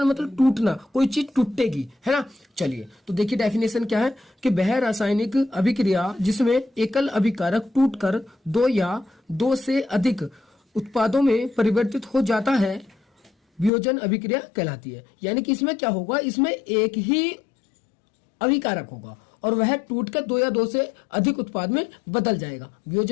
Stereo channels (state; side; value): drops out; right; at 13.7 s